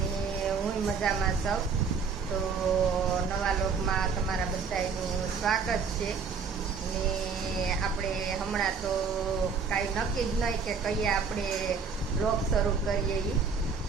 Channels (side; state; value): left; quieter; 5.5 dB